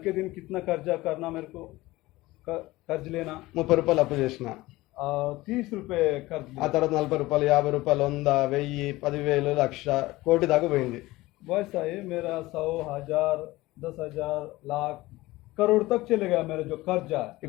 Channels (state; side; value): quieter; right; 19.1 dB